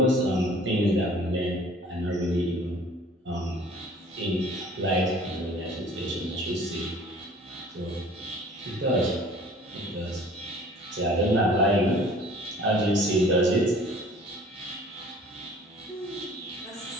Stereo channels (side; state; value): both; normal; correlation 0.50